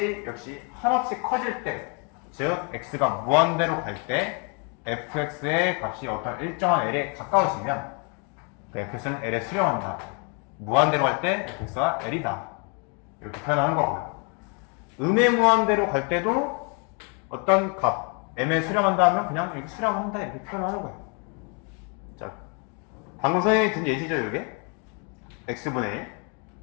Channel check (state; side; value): quieter; right; 36.2 dB